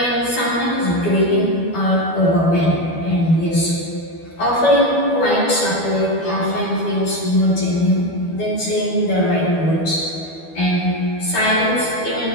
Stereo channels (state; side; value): late; right; 12 ms